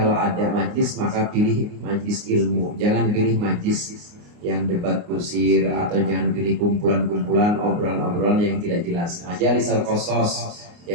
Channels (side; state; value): left; late; 29 ms